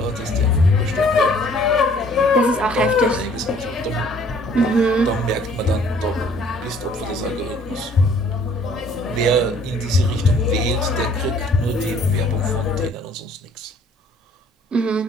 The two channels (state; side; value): normal; both; correlation 0.57